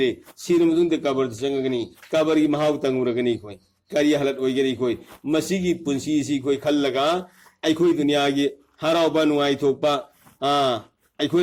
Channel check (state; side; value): identical; both; correlation 1.00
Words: sinum dunde kabar sangagani kabari mahaw tanguragani koi kari halat oigani koi masigi punsi si koi khallaga ai koi dunia gi harau banu ai thokpa ai